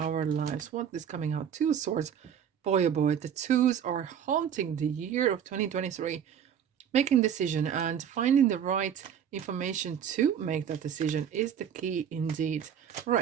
lives. What is coming out? Two Swords. Boy, oh boy, the twos are haunting the year of 2023. Making decision and finding the right information to make that decision is the key indeed.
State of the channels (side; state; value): left; quieter; 8.5 dB